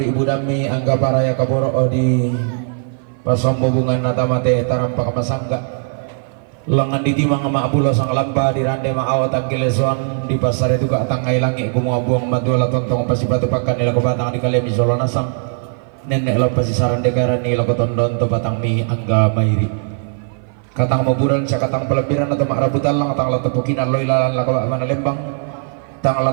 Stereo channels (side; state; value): left; silent; 56 dB below the other